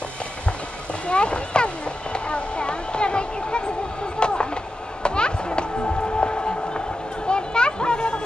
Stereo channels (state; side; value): normal; both; correlation 0.91